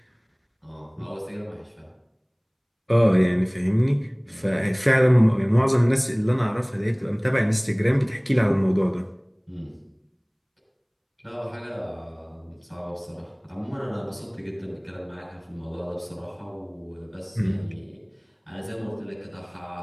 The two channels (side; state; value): both; identical; correlation 1.00